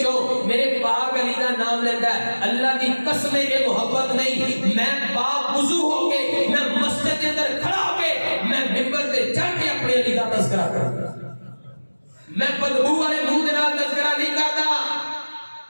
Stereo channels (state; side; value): inverted; both; correlation -1.00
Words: میرے پاک علی دا نام لیندا ہے. اللہ دی قسم اے محبت نہیں, میں پاک وضو ہو کے میں مسجد دے اندر کھڑا ہو کے میں منبر تے چڑھ کے اپنے علی دا تذکرہ کردا, میں بدبو والے منہ دے نال تذکرہ نہیں کردا,